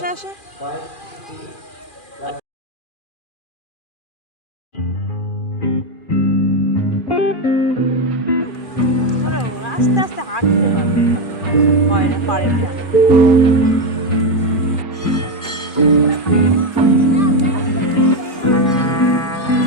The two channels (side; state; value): right; late; 2.4 ms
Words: আসো। আস্তে আস্তে হাঁটতে হয় না, পারে না।